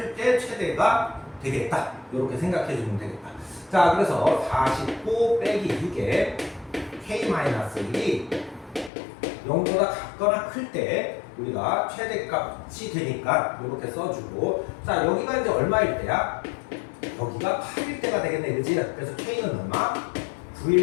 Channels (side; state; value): right; drops out; at 8.9 s